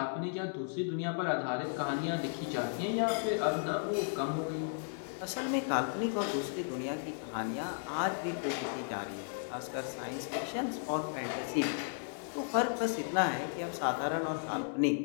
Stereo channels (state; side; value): silent; right; 55 dB below the other